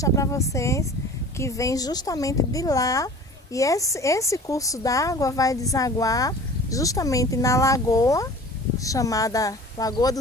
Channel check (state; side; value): normal; both; correlation 0.42